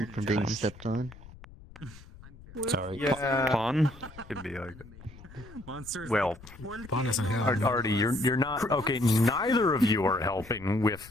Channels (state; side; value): noise; left; rumble, 19 dB below the sound